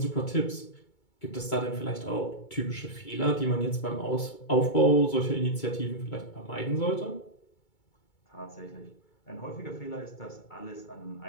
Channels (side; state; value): right; late; 2.3 ms